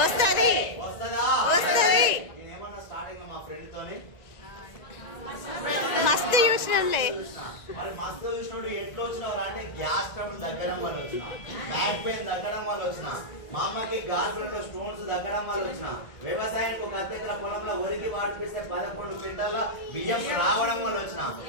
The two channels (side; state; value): right; late; 1.9 ms